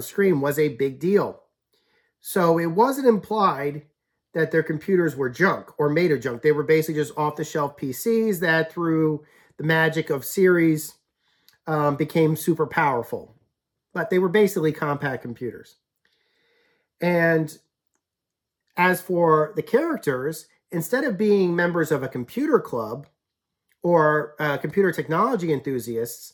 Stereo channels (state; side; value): identical; both; correlation 1.00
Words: screen was a big deal. So it wasn't implied that their computers were junk or made of junk. They were basically just off-the-shelf PCs that, through the magic of series, became super powerful. But they were basically Compaq computers. And as for the characters, instead of being members of a computer club or computer technology enthusiasts,